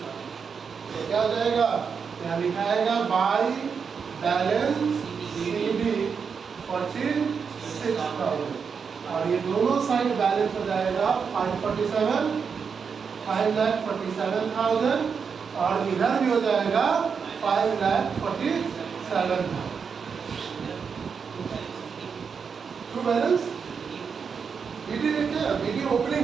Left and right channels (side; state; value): left; quieter; 6.1 dB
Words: तो क्या हो जाएगा? क्या लिखाएगा? बाई बैलेंस सीडी 46,000, और ये दोनों साइड बैलेंस हो जाएगा 547,000, और इधर भी हो जाएगा 5,47,000। ट्रू बैलेंस बीडी देखिए, बीडी ओपनिंग